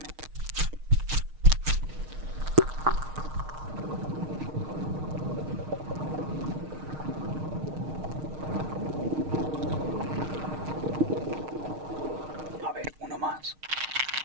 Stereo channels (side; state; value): left; late; 6.5 ms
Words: A ver, uno más.